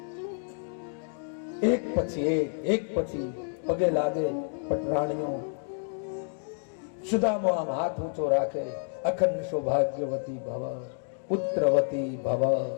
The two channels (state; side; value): silent; right; digital silence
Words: એક પછી એક પછી પગે લાગે પટરાણીઓ. સુદામો આમ હાથ ઊંચો રાખે, અખંડ સૌભાગ્યવતી ભવ, પુત્રવતી ભવ,